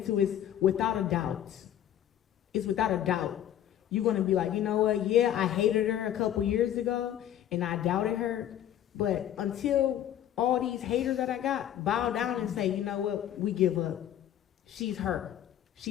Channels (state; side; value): quieter; right; 11.1 dB